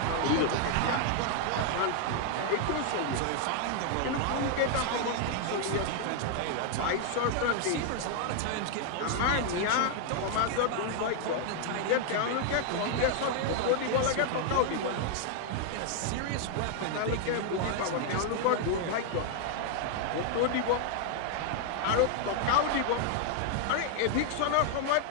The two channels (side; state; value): both; different; correlation 0.00